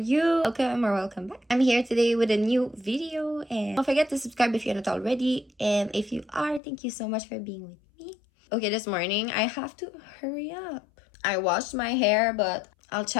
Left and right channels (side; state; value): right; drops out; at 6.6 s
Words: Welcome or welcome back. I'm here today with a new video, and don't forget to subscribe if you're not already, and if you are, thank you so much for being with me. Okay, this morning I have to hurry up. I washed my hair, but I'll